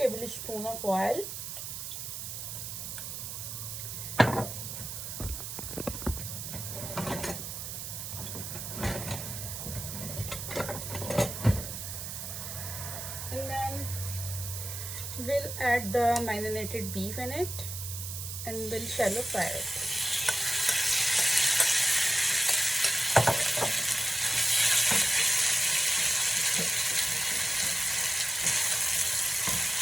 of oil. And then we'll add the marinated beef in it and we'll shallow fry it.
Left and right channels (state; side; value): noise; right; hiss, 6 dB below the sound